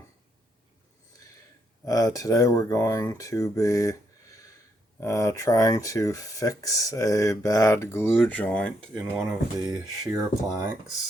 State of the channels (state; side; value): normal; both; correlation 0.76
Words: Today we're going to be trying to fix a bad glue joint in one of the shear